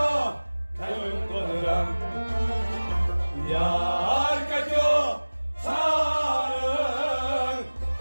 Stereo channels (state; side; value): inverted; both; correlation -1.00